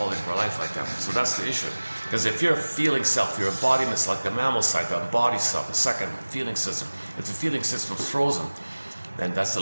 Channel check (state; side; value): inverted; both; correlation -1.00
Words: of our life like that. So that's the issue. Because if you're a feeling self, your embodiment's like the mammal side, the embodied self, the second feeling system. If the feeling system's frozen, then that's the